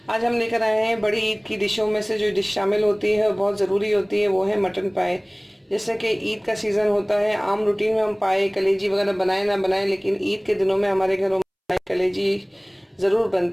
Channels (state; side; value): identical; both; correlation 1.00